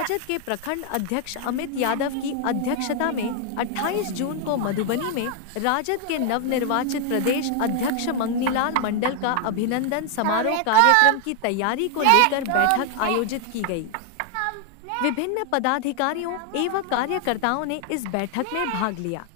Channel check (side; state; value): both; different; correlation 0.00